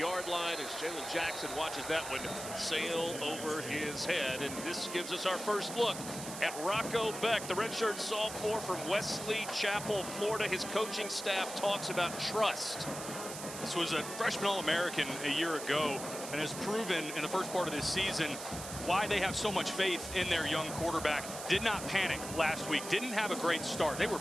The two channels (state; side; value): noise; right; hiss, 9 dB below the sound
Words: line as Jalen Jackson watches that one sail over his head. And this gives us our first look at Rocco Becht, the redshirt sophomore from Wesley Chapel, Florida. His coaching staff talks about trust. This was a freshman All-American a year ago and has proven in the first part of this season why they have so much faith in their young quarterback. Did not panic last week, didn't have a great start. They were